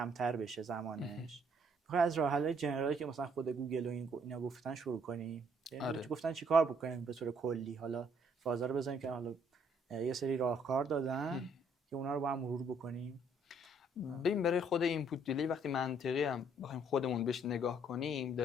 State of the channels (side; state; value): both; normal; correlation 0.65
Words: بشه زمانش. میخوای از راه حل‌های جنرالی که مثلا خود گوگل و اینا گفتن شروع کنیم. آره. گفتن چیکار بکنیم به طور کلی. حالا فازا رو بزنیم که حالا یه سری راهکار دادن که اونا رو با هم مرور بکنیم. ببین برای خود اینپوت دیلی وقتی منطقی هم بخوایم خودمون بهش نگاه کنیم،